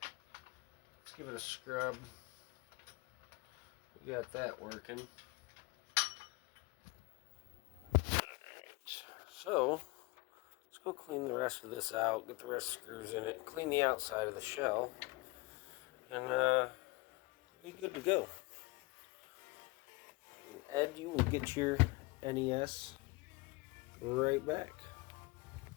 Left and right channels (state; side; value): quieter; right; 25.0 dB